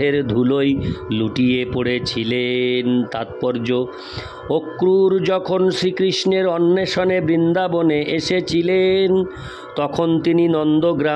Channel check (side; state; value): both; identical; correlation 1.00